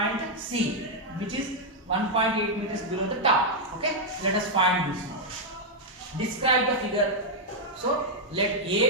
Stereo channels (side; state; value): both; normal; correlation -0.02